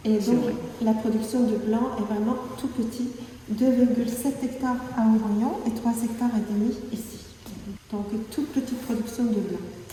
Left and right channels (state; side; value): identical; both; correlation 1.00